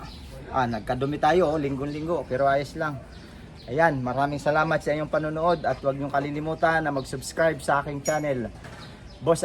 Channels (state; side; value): identical; both; correlation 1.00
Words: Nagkadumi tayo, linggo-linggo, pero ayos lang. Ayan, maraming salamat sa inyong panonood at huwag niyong kalilimutan na mag-subscribe sa aking channel, Boss